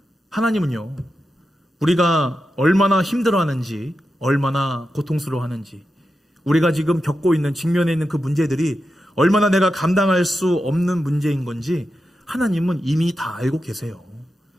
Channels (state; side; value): normal; both; correlation 0.89